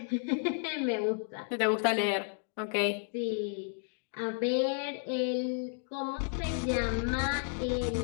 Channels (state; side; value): silent; right; 56 dB below the other